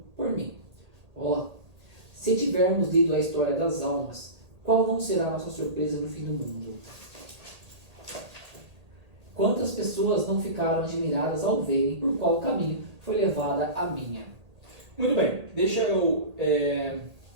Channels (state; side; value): late; left; 1.8 ms